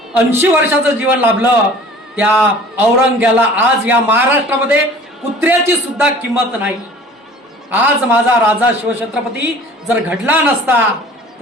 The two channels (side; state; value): both; normal; correlation 0.47